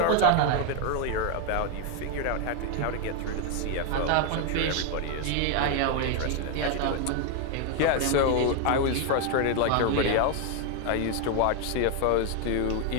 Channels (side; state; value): both; different; correlation 0.01